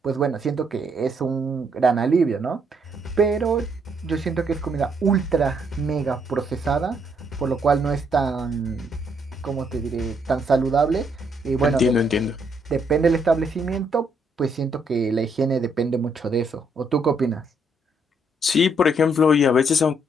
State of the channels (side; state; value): both; normal; correlation 0.72